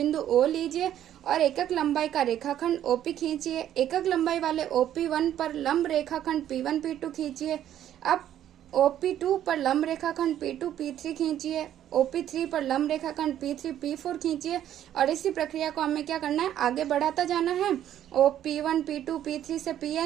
O लीजिए और एकक लंबाई का रेखाखंड OP खींचिए। एकक लंबाई वाले OP1 पर लंब रेखाखंड P1 P2 खींचिए। अब OP2 पर लंब रेखाखंड P2 P3 खींचिए। OP3 पर लंब रेखाखंड P3 P4 खींचिए और इसी प्रक्रिया को हमें क्या करना है, आगे बढ़ाता जाना है OP1 P2 P3 से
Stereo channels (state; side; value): quieter; left; 11.2 dB